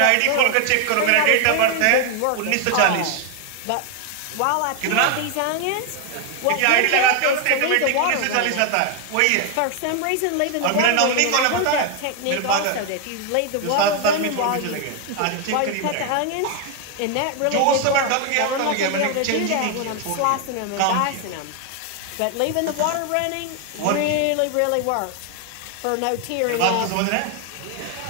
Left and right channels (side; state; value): both; different; correlation 0.01